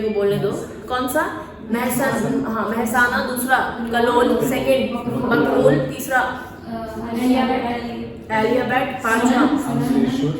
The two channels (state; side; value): identical; both; correlation 1.00